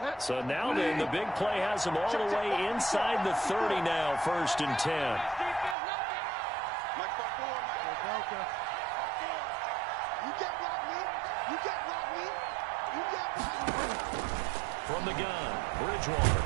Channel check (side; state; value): left; drops out; at 5.8 s